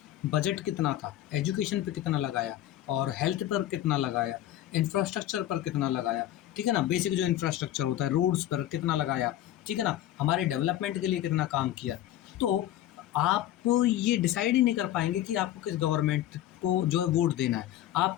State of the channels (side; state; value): right; quieter; 13.1 dB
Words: बजट कितना था, एजुकेशन पे कितना लगाया और हेल्थ पर कितना लगाया, इंफ्रास्ट्रक्चर पर कितना लगाया, ठीक है ना, बेसिक जो इंफ्रास्ट्रक्चर होता है, रोड्स पर कितना लगाया, ठीक है ना, हमारे डेवलपमेंट के लिए कितना काम किया, तो आप ये डिसाइड ही नहीं कर पाएंगे कि आपको किस गवर्नमेंट को जो है वोट देना है। आप